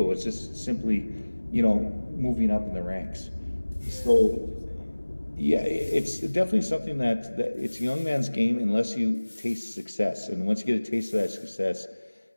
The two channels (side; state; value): both; inverted; correlation -1.00